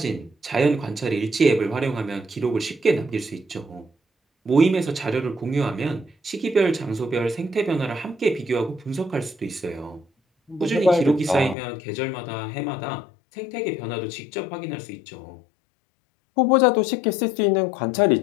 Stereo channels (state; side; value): drops out; right; at 11.6 s